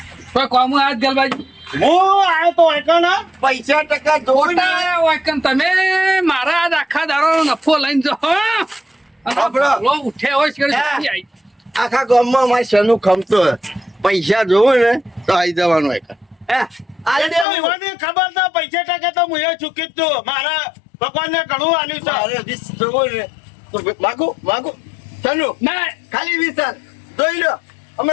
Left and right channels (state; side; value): drops out; right; at 17.4 s